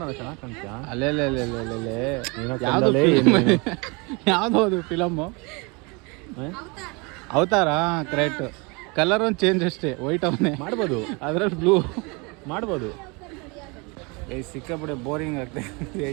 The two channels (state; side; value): quieter; left; 29.1 dB